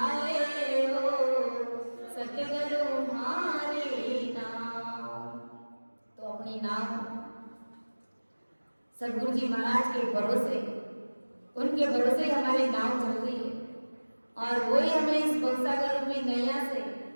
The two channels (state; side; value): inverted; both; correlation -1.00